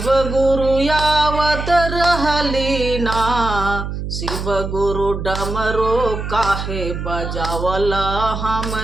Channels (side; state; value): right; noise; hum, 5 dB below the sound